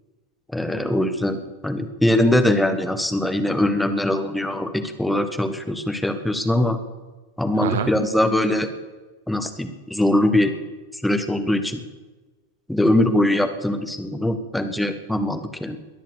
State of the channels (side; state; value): both; normal; correlation 0.77